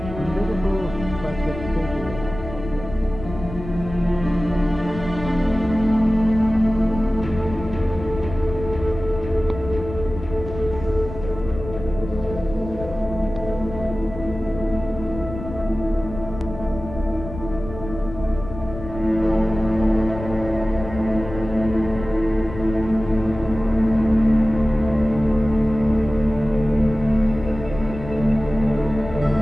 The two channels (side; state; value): left; noise; rumble, 11 dB below the sound